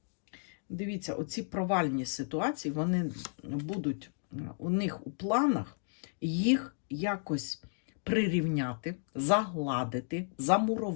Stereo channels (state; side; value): silent; right; digital silence